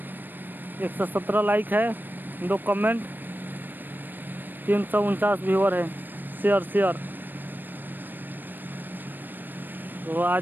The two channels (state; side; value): late; left; 0.092 ms